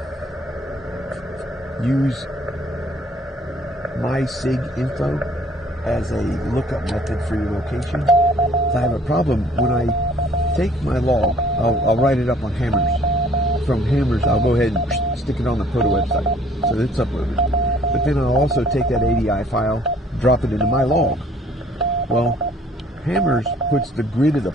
use my SIG info as a lookup method for your location. If I have a problem, when I take my log, I'll write it up on Hammers. From Hammers, I'll go ahead and stick it on the POTA website, so it's uploaded. But then I'll also take that ADI file, drop it into my log. Well, Hammers puts the grid of the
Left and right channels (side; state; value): both; normal; correlation 0.57